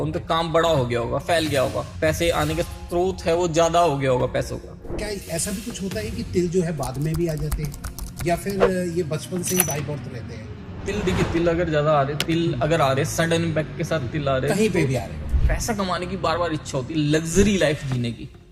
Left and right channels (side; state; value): both; identical; correlation 1.00